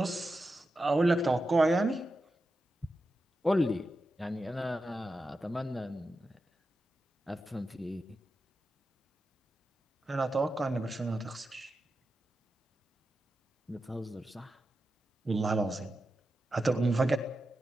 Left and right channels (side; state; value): both; normal; correlation 0.90